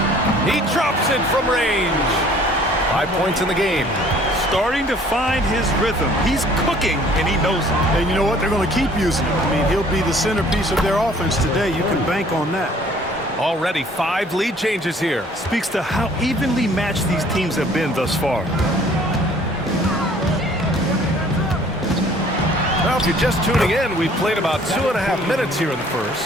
He drops it from range. 5 points in the game. Starting to find his rhythm. He's cooking, and he knows it. And you know what? They're going to keep using him. I mean, he'll be the centerpiece of their offense today. You can bank on that. Already 5 lead changes here. Speaks to how evenly matched these teams have been thus far. Well, if you're just tuning in, we've played about 2.5 minutes here in the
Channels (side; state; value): both; normal; correlation 0.55